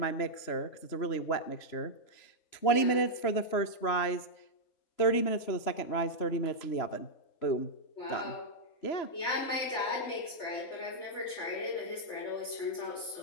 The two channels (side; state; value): right; late; 3.0 ms